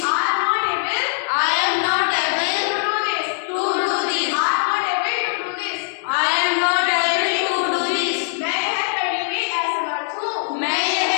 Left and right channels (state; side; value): silent; right; 62 dB below the other